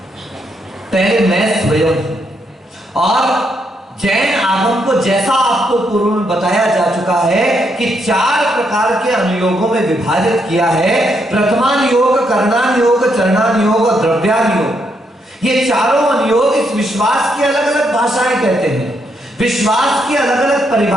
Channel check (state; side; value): normal; both; correlation 0.77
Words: पहले मैं स्वयं। और जैन आगम को जैसा आपको पूर्व में बताया जा चुका है कि 4 प्रकार के अनुयोगों में विभाजित किया है। प्रथमान योग, करणान योग, चरणान योग और द्रव्यान योग। ये चारों अनुयोग इस विश्वास की अलग अलग भाषाएं कहते हैं, विश्वास की अलग अलग